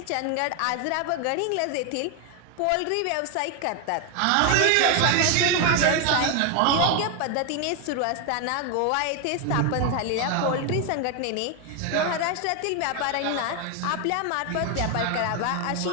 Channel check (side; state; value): both; different; correlation 0.01